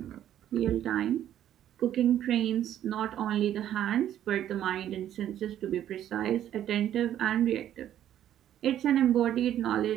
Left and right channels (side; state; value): left; quieter; 11.2 dB